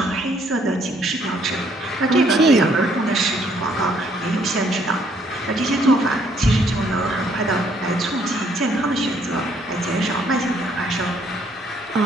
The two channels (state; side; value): normal; both; correlation 0.67